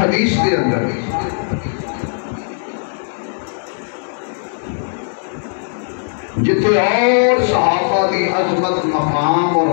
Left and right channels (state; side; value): silent; right; 62 dB below the other